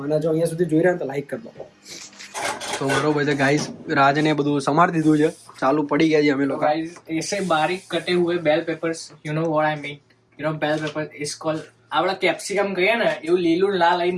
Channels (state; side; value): identical; both; correlation 1.00